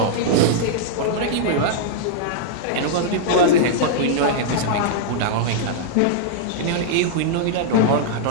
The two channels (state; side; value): different; both; correlation -0.02